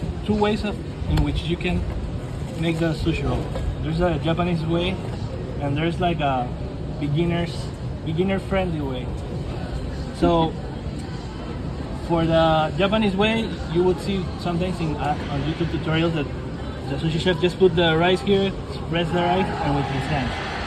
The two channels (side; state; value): both; identical; correlation 1.00